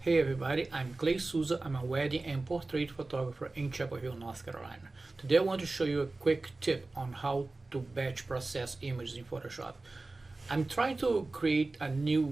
Hey everybody, I'm Clay Souza. I'm a wedding and portrait photographer in Chapel Hill, North Carolina. Today I want to show you a quick tip on how to batch process images in Photoshop. I'm trying to create a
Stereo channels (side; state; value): left; quieter; 3.3 dB